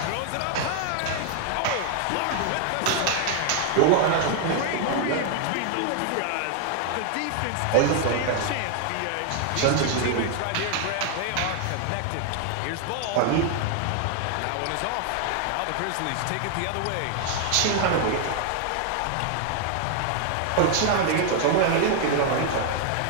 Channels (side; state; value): both; different; correlation 0.00